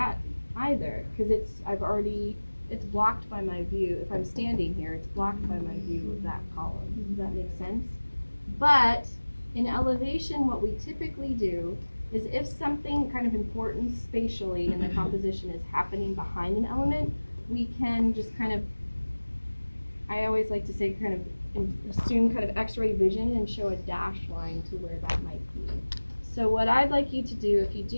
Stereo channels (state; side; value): inverted; both; correlation -1.00